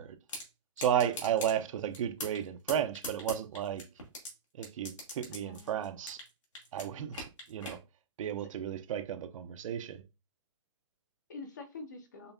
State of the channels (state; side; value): quieter; left; 8.1 dB